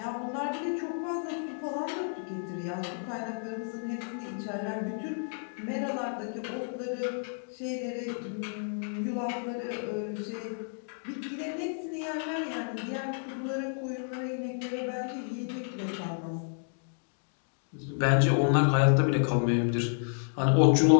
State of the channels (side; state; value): right; silent; digital silence